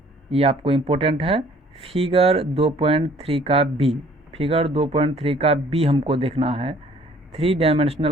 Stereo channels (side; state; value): both; normal; correlation 0.57